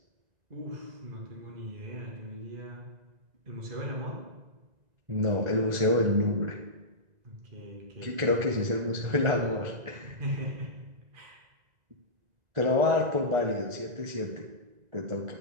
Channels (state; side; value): late; left; 2.0 ms